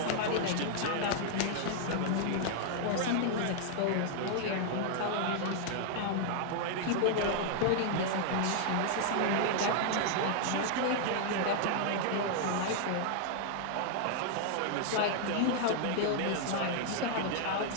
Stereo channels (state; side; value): different; both; correlation 0.00